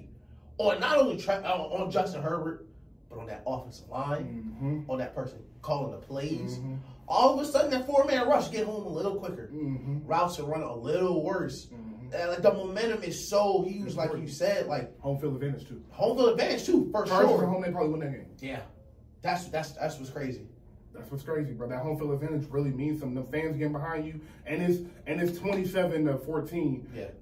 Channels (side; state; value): both; identical; correlation 1.00